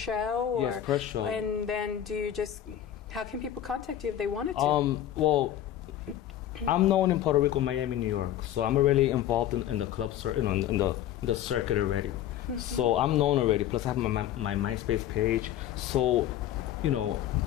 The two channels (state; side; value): quieter; right; 11.5 dB